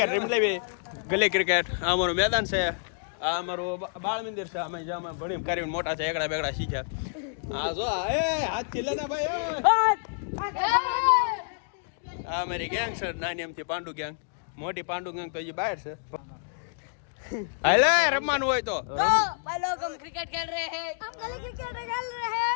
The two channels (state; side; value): silent; right; digital silence